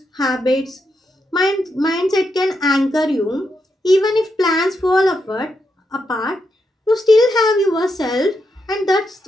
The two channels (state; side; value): normal; both; correlation 0.83